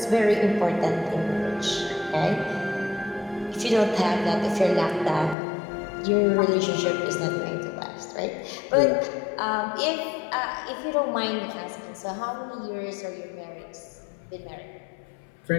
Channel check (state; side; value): drops out; right; at 5.4 s